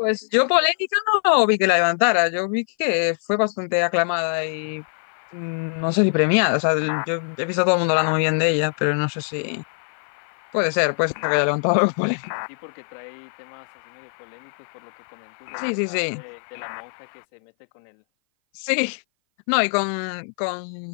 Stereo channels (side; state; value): right; silent; 57 dB below the other